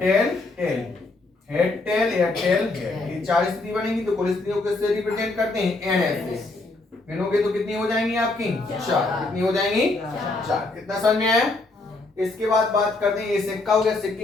टेल, हेड टेल या टेल हेड, ये 4 स्थिति बनेगी। तो कुल स्थितियों को किससे रिप्रेजेंट करते हैं? NS से। गिनोगे तो कितनी हो जाएंगी आपकी? 4। कितनी हो जाएंगी? 4। कितना समझ में आया? इसके बाद बात करते हैं, ये सिक्का हो गया।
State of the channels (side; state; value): right; quieter; 3.2 dB